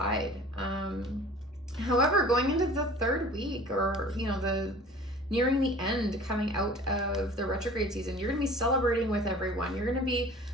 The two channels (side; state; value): both; normal; correlation 0.45